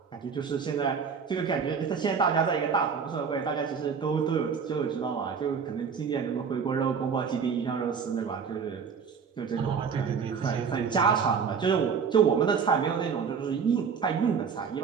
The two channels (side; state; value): left; quieter; 6.3 dB